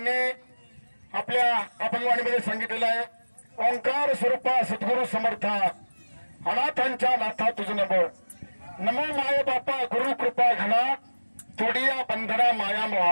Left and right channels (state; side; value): inverted; both; correlation -1.00